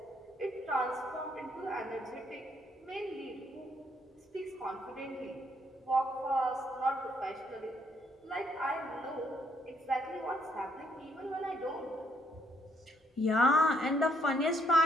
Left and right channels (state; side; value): normal; both; correlation 0.70